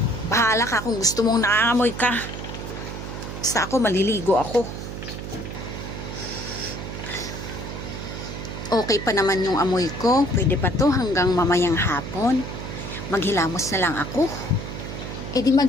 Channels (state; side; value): noise; right; hum, 8 dB below the sound